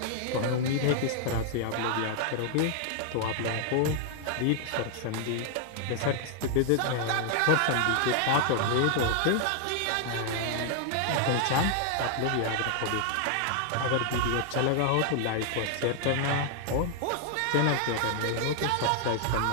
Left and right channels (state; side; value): different; both; correlation 0.00